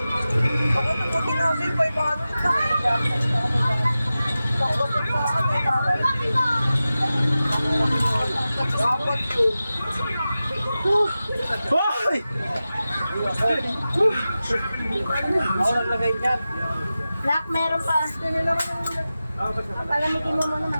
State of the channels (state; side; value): inverted; both; correlation -0.94